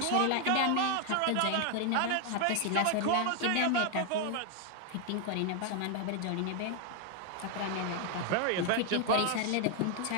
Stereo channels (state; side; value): different; both; correlation 0.00